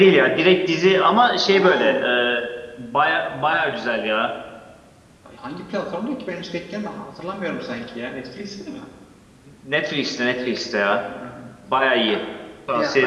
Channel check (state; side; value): identical; both; correlation 1.00